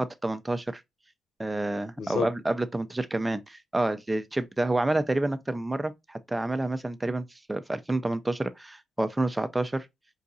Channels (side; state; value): both; normal; correlation 0.96